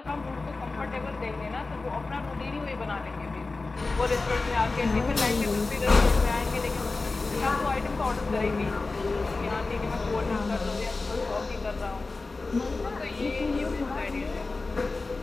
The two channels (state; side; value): quieter; right; 3.6 dB